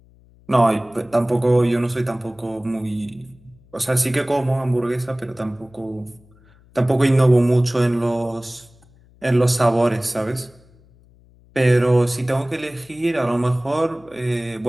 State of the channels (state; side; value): noise; left; hum, 28 dB below the sound